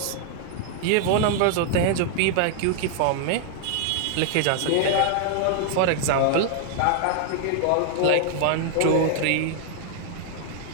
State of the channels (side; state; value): both; different; correlation 0.00